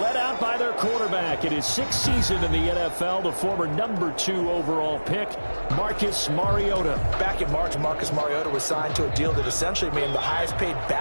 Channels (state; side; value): inverted; both; correlation -1.00